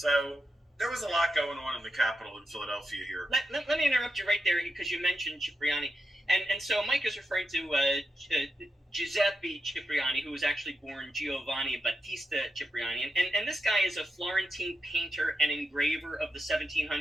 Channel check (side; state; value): both; normal; correlation 0.85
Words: there was a lot going on in the capital in Philadelphia here. Let me interrupt you right there, because you mentioned Cipriani. And so Mike is referring to Giuseppe Cipriani, who was actually born Giovanni Battista Cipriani. And this guy is a Florentine painter and engraver of the